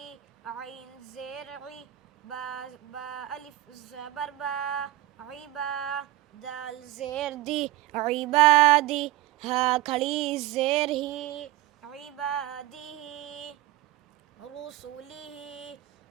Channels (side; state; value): left; quieter; 15.5 dB